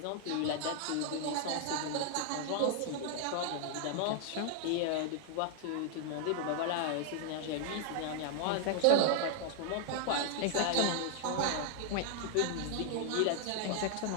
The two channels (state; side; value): different; both; correlation 0.00